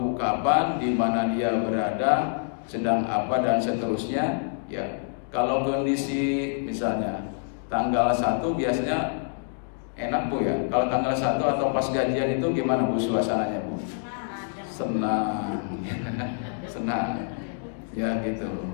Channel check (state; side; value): silent; right; digital silence